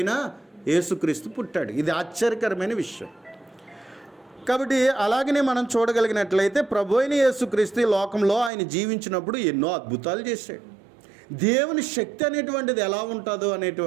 యేసుక్రీస్తు పుట్టాడు. ఇది ఆశ్చర్యకరమైన విషయం. కాబట్టి అలాగనే మనం చూడగలిగినట్లయితే ప్రభు అయిన యేసుక్రీస్తు ఈ లోకంలో ఆయన జీవించినప్పుడు ఎన్నో అద్భుతాలు చేశాడు. దేవుని శక్తి అనేటువంటిది ఎలా ఉంటుందో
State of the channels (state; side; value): drops out; left; at 8.5 s